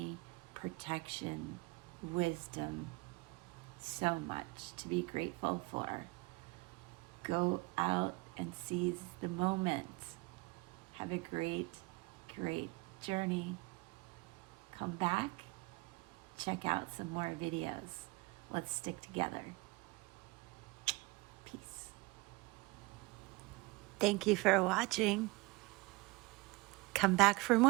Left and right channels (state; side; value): quieter; left; 24.4 dB